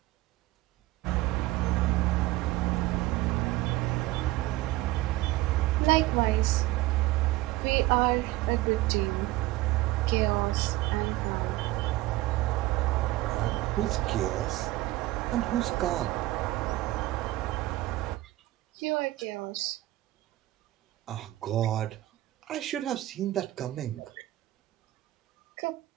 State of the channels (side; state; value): left; quieter; 17.7 dB